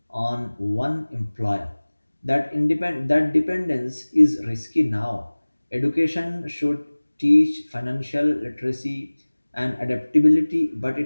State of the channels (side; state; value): both; inverted; correlation -1.00